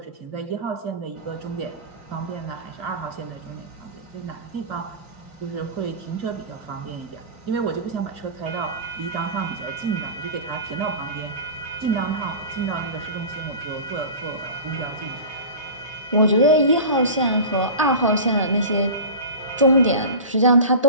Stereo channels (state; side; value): inverted; both; correlation -0.32